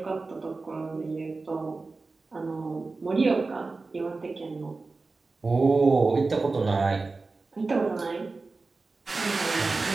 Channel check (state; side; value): quieter; left; 3.8 dB